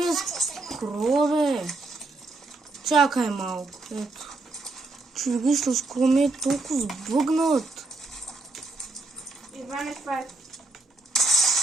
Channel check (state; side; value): quieter; left; 3.2 dB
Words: е скрола, бе? Чакай малко, ето. Човек, вижте, скрол ми е толкова сбъгнат. Иване, това е.